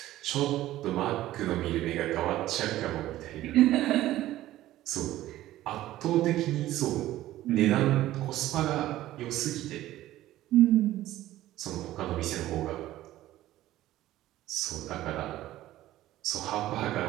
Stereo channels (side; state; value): left; quieter; 14.9 dB